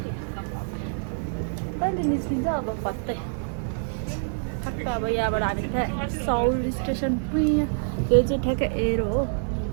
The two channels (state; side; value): silent; left; 61 dB below the other